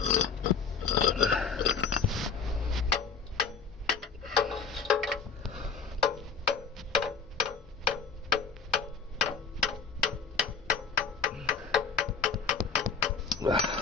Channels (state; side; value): quieter; right; 5.8 dB